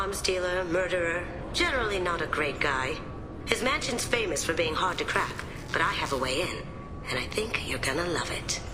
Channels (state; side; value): identical; both; correlation 1.00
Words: dealer, murderer, generally not a great guy. His mansion's famous for being hard to crack, but I have a way in, and I think you're gonna love it.